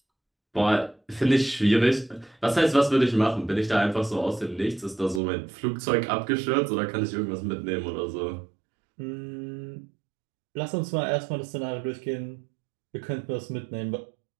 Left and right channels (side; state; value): left; drops out; at 5.2 s